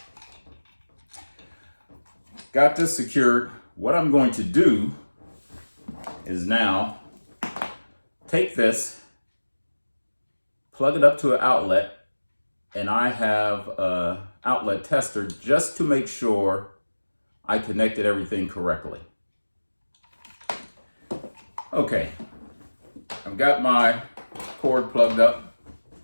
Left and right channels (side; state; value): both; inverted; correlation -1.00